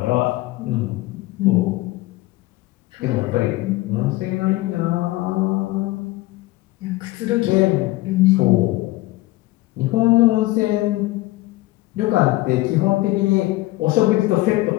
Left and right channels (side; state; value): right; quieter; 18.9 dB